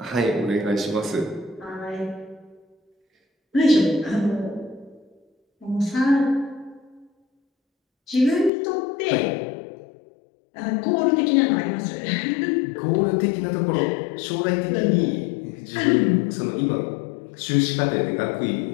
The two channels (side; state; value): right; drops out; at 8.5 s